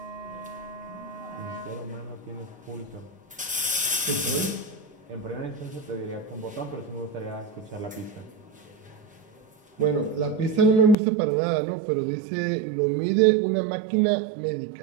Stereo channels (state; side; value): drops out; left; at 11.0 s